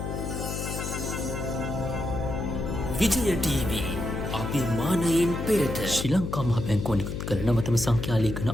විජය ටීවී අභිමානයෙන් පෙරට ශ්‍රී ලංකා මහ බැංකුව නිකුත් කළ නවතම සංඛ්‍යා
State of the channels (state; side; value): noise; left; hum, 4 dB below the sound